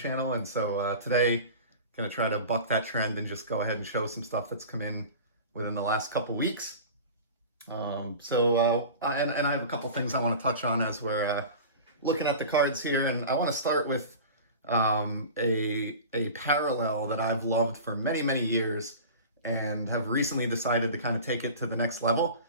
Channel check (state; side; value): inverted; both; correlation -0.36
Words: And so today, going to try to buck that trend and just go ahead and show some stuff that's come in within the last couple weeks. And I have a couple things I want to touch on as we're looking at the cards here. And I want to start with a parallel that I've loved for many, many years and have recently decided to kind of take it to the next level.